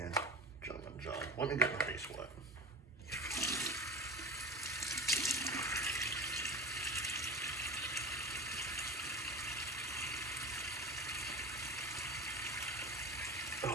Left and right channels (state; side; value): normal; both; correlation 0.33